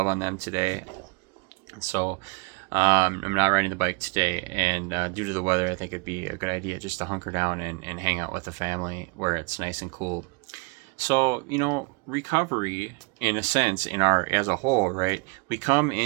on them today. And so I'm not riding the bike today, and due to the weather, I think it'd be a good idea just to hunker down and hang out with the family where it's nice and cool. So, recovery, in a sense, as a whole, right? We come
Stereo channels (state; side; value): quieter; left; 30.4 dB